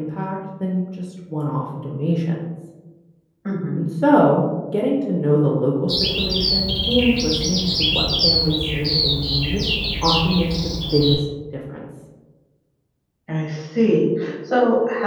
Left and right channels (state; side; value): identical; both; correlation 1.00